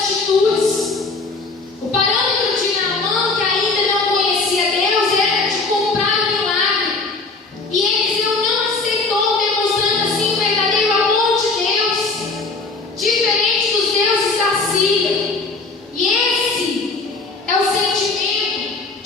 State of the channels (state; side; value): quieter; right; 3.8 dB